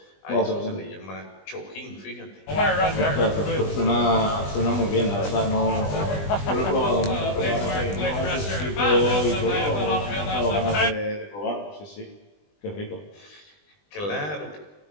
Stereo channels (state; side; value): late; right; 20 ms